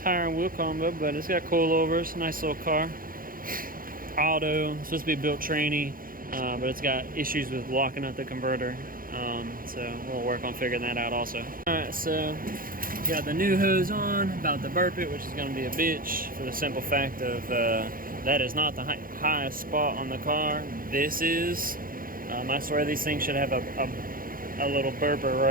and wheel combo, but it's got coilovers. Nice little car. Auto, it's supposed to be built tranny, but it's got issues with locking up the converter, so we'll work on figuring that out also. Alright, so Got the new hose on, about to burp it, which is going to be a bitch for the simple fact of that is not the highest spot on the car. This is. I swear these things should have a little burper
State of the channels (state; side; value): late; left; 0.41 ms